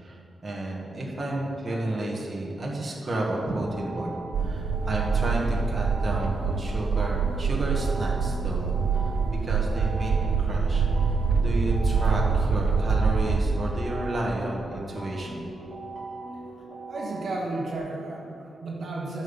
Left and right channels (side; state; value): left; quieter; 3.6 dB